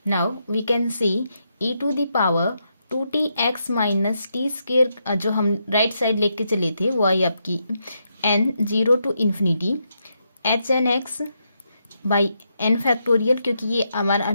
Now we can see e to the power 2tx minus t² जो हम right side लेके चले थे वो आई आपकी n 0 to infinity hnx by n factorial, क्योंकि ये हमारा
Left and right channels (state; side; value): inverted; both; correlation -0.81